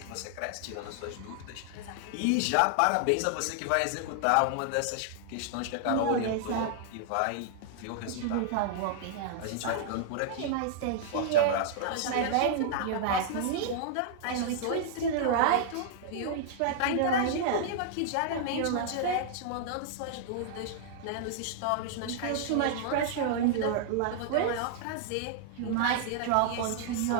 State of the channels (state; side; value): different; both; correlation -0.01